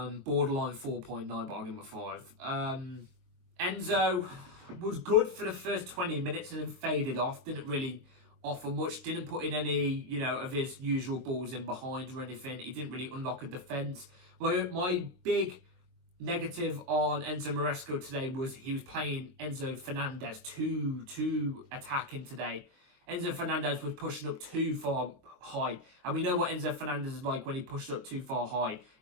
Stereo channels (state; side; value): late; left; 23 ms